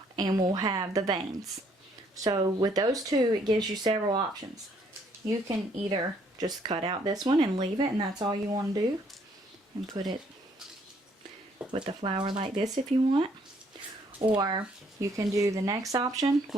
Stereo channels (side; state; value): both; normal; correlation 0.66